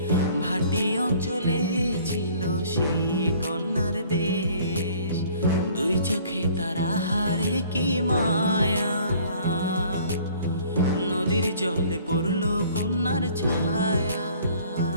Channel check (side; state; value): both; inverted; correlation -0.54